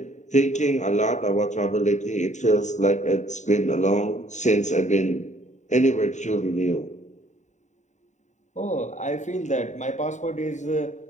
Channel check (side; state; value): right; late; 0.34 ms